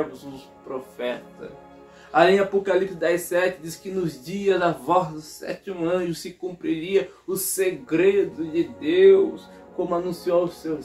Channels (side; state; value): both; identical; correlation 1.00